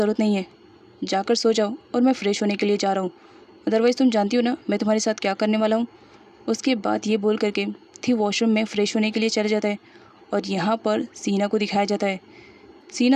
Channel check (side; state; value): both; identical; correlation 1.00